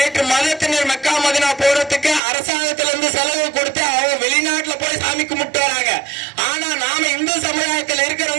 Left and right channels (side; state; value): left; drops out; at 2.2 s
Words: மதத்தினர் மெக்கா மதினா போறதுக்கு அரசாங்கத்துல இருந்து செலவு கொடுத்து அவங்க வெளிநாட்டுல போய் சாமி கும்பிட்டு வராங்க. ஆனா நாம இந்து சமுதாயத்தில்